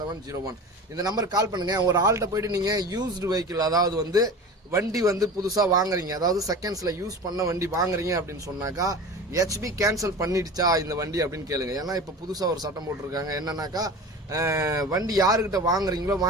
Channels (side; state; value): both; normal; correlation 0.34